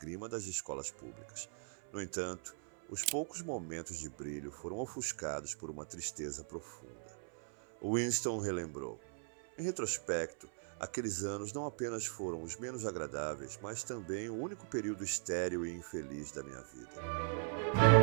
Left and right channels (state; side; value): silent; left; 51 dB below the other